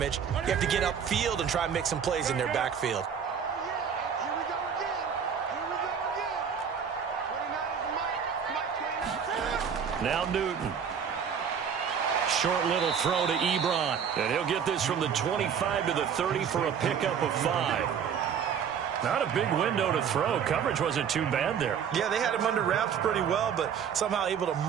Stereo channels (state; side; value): quieter; left; 7.5 dB